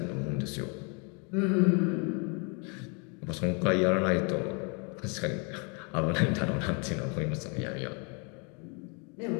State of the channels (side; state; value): right; quieter; 34.7 dB